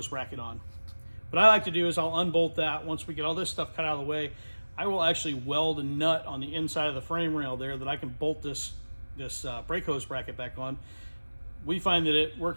bracket on. What I like to do is I'll unbolt that. Once we get all this stuff cut out of the way, I will actually weld a nut on the inside of the frame rail there that I can bolt this brake hose bracket back on. We find that it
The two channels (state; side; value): inverted; both; correlation -1.00